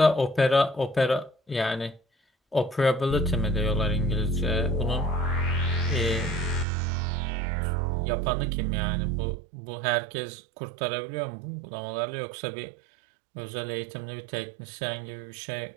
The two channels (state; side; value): drops out; left; at 6.7 s